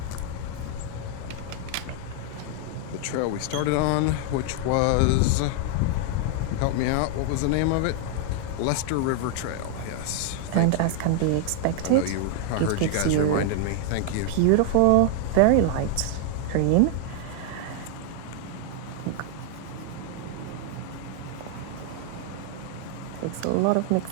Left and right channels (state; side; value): different; both; correlation 0.00